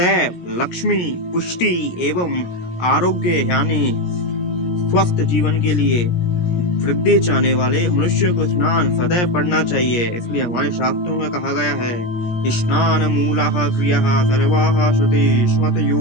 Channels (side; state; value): right; late; 17 ms